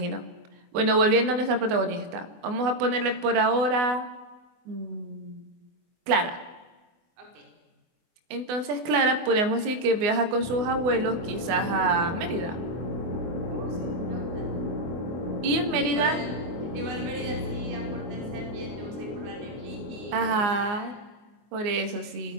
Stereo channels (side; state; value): left; late; 24 ms